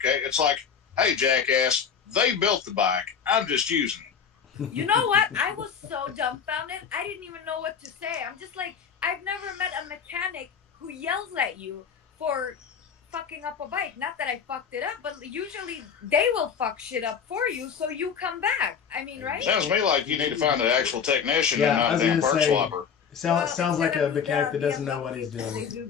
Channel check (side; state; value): right; quieter; 7.0 dB